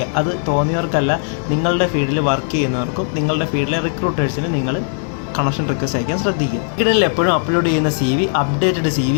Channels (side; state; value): right; silent; digital silence